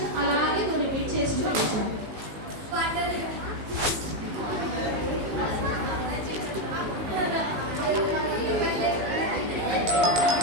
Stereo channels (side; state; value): left; late; 19 ms